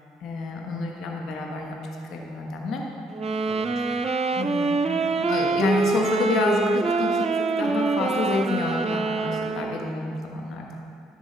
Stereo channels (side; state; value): both; normal; correlation 0.68